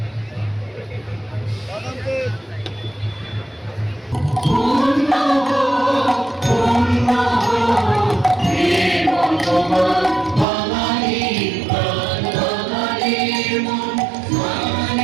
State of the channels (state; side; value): drops out; left; at 10.5 s